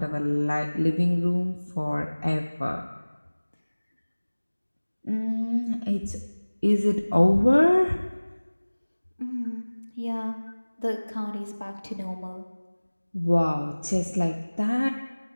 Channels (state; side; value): inverted; both; correlation -1.00